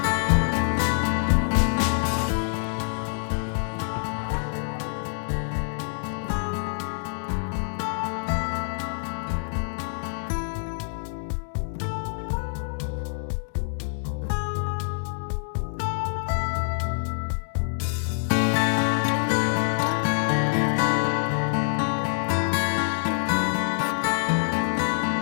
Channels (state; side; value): silent; right; digital silence